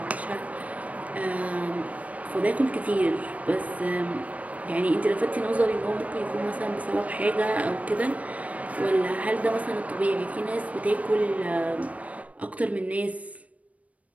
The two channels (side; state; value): left; late; 0.068 ms